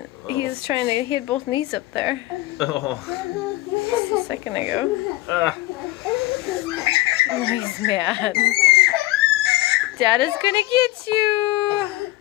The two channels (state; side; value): quieter; right; 18.0 dB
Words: Oh. He was trying to, he had both knees up there Oh. just a second ago. Ah. Oh, he's mad. Dada's gonna get you.